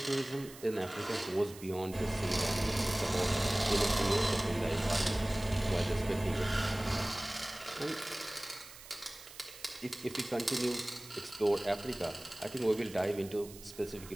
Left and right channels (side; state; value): right; noise; hiss, 17 dB below the sound